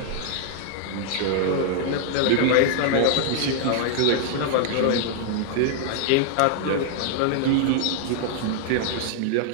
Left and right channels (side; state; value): both; different; correlation -0.01